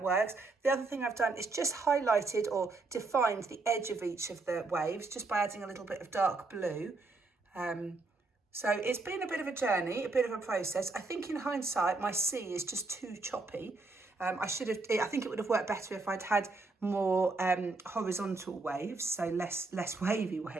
works. The other thing I've done is just highlighted or defined the edge of each of the waves just by adding a little bit of dark blue. So it's been a bit of a journey, a bit of a process. I think in hindsight, my sea is just too choppy. I think it would have worked better if I'd had more horizontal waves, so less wavy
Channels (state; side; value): quieter; left; 3.6 dB